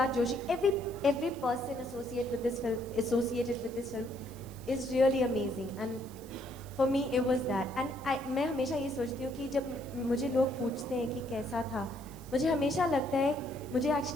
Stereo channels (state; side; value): noise; right; hiss, 21 dB below the sound